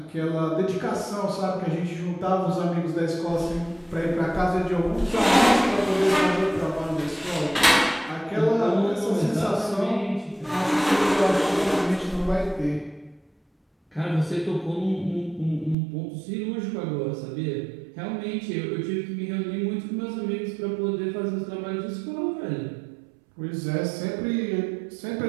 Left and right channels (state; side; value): drops out; left; at 15.8 s